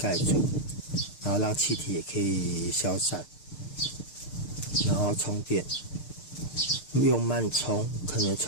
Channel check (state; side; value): late; right; 6.6 ms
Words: 住，然后让气体也可以消散，然后充电，用慢充，可能